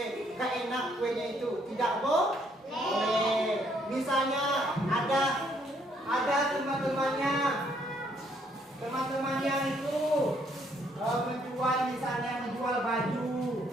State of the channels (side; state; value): both; normal; correlation 0.68